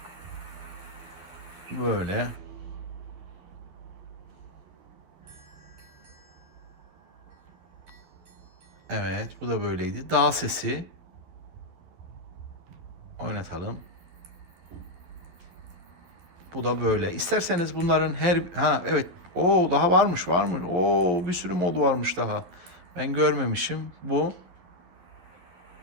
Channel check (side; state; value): left; late; 12 ms